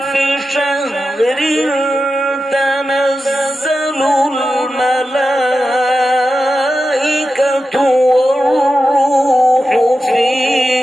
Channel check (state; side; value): normal; both; correlation 0.91